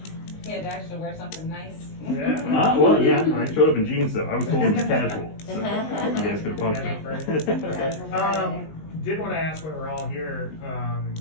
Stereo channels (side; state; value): right; late; 19 ms